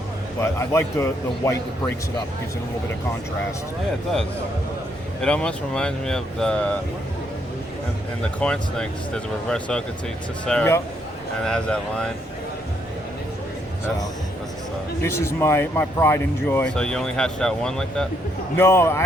But I like the white that breaks it up, gives it a little bit of contrast. Yeah, it does. It almost reminds me of in the corn snakes, there's a reverse Okatee Tessera, Yep. and it has that line. That's a stuff. This is my pride and joy. So you only hatched out one like that? No,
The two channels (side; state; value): both; normal; correlation 0.74